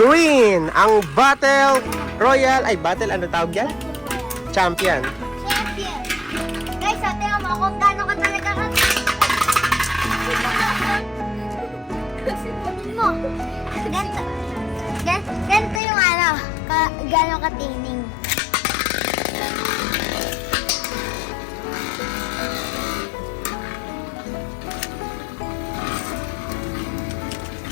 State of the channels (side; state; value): right; drops out; at 15.8 s